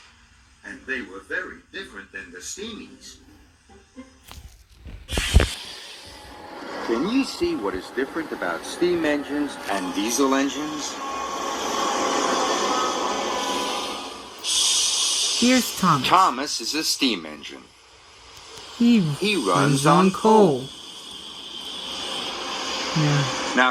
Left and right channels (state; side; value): identical; both; correlation 1.00